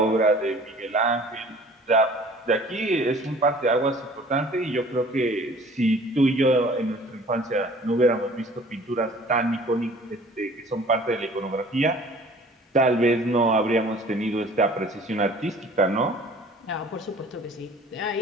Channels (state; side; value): normal; both; correlation 0.49